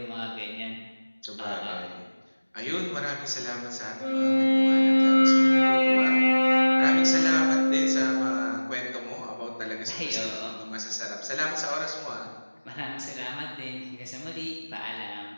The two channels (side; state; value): both; inverted; correlation -1.00